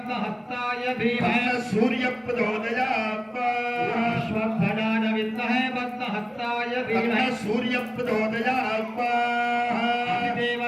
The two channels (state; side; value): identical; both; correlation 1.00